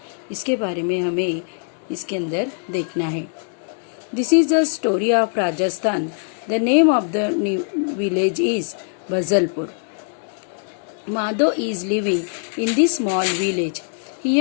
इसके बारे में हमें इसके अंदर देखना है। This is the story of Rajasthan. The name of the village is Bajalpur. Madho is living in this small village.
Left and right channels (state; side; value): silent; right; 64 dB below the other